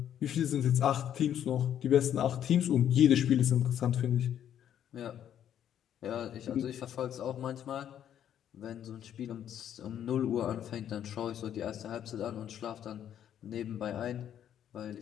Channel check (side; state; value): right; quieter; 10.0 dB